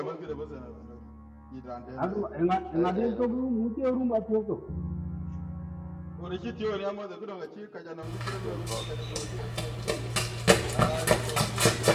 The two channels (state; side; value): identical; both; correlation 1.00